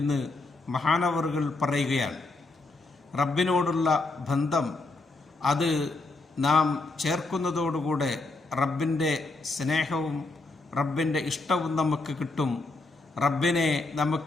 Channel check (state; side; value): quieter; right; 3.3 dB